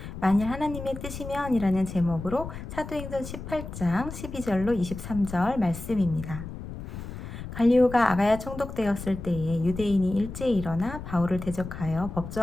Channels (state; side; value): noise; left; rumble, 10 dB below the sound